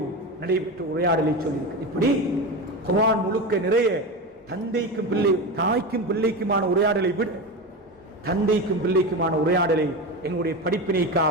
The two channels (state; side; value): normal; both; correlation 0.22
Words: நடைபெற்ற உரையாடலை சொல்லியிருக்கிறது. இப்படி குர்ஆன் முழுக்க நிறைய தந்தைக்கும் பிள்ளை, தாய்க்கும் பிள்ளைக்குமான உரையாடலை விட தந்தைக்கும் பிள்ளைக்குமான உரையாடலை எங்களுடைய